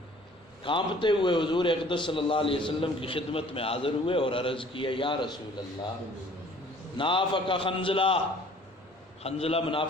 کانپتے ہوئے حضور اقدس صلی اللہ علیہ وسلم کی خدمت میں حاضر ہوئے اور عرض کیا، یا رسول اللہ، نافق حنظلہ، حنظلہ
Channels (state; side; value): normal; both; correlation 0.53